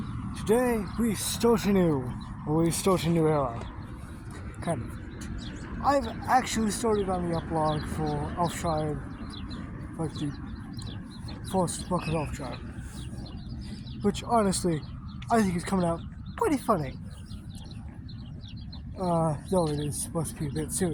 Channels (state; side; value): identical; both; correlation 1.00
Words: Today we start a new era. Kind of. I've actually started on the epilog for Elftribe, like the first book of Elftribe, which honestly, I think is coming out pretty funny. Though it is supposed to be a bit